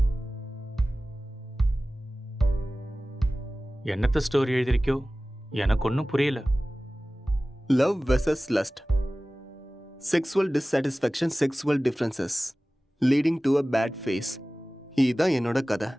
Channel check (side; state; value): both; normal; correlation 0.97